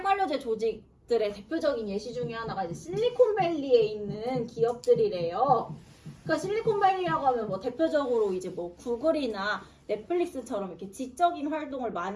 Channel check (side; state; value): both; identical; correlation 1.00